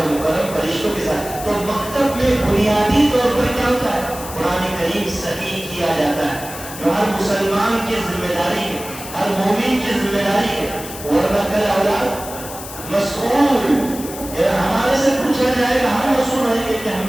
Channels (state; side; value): noise; left; hiss, 12 dB below the sound